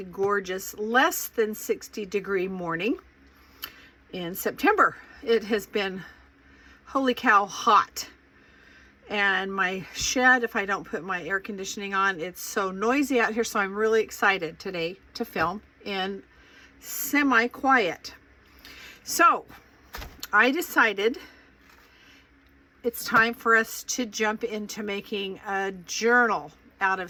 gorgeous, less than 60-degree morning in September. It has been, holy cow, hot. And my shed, if I don't put my air conditioning on, it's so noisy out here. So I'm really excited today to film in semi-quiet. So I decided it's time for us to jump into making a journal out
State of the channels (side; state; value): both; identical; correlation 1.00